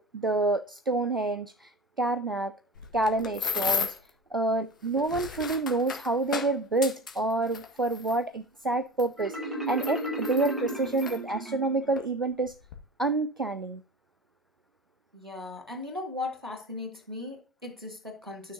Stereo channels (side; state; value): both; normal; correlation 0.34